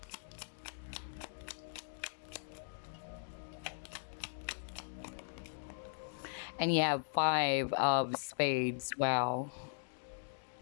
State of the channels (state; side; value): silent; right; digital silence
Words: And you have 5 of spades. Wow.